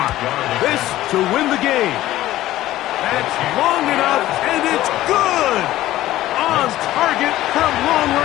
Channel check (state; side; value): quieter; right; 15.0 dB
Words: This to win the game. That's long enough, and it's good! On target from long